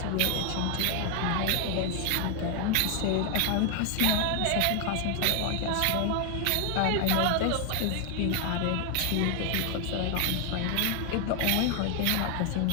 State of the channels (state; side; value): different; both; correlation 0.01